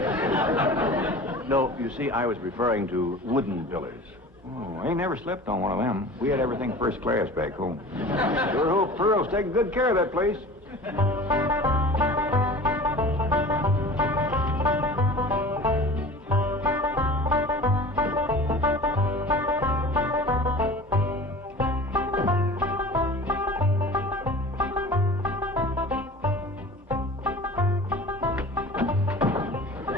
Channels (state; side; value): normal; both; correlation 0.39